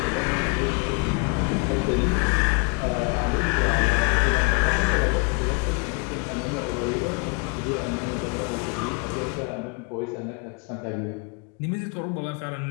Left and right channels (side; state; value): right; quieter; 34.1 dB